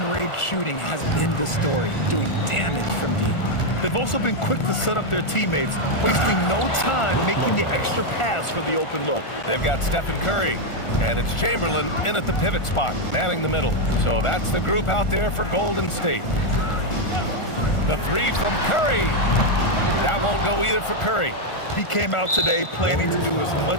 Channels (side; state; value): right; late; 1.4 ms